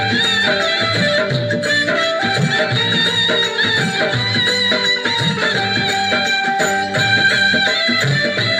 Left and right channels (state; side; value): identical; both; correlation 1.00